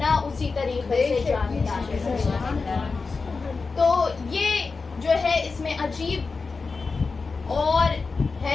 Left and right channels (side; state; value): right; quieter; 4.4 dB